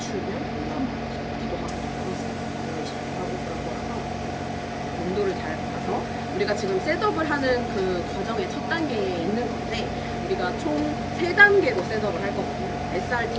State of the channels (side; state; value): both; identical; correlation 1.00